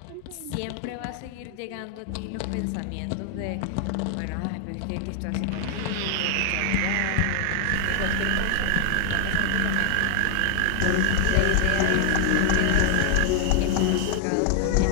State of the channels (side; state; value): both; different; correlation 0.00